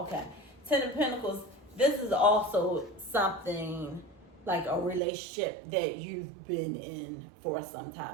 okay. Ten of Pentacles, this is also something like a relationship that you've been in for some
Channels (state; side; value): drops out; left; at 5.0 s